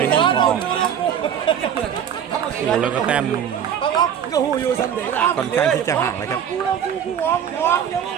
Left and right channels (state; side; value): quieter; left; 8.9 dB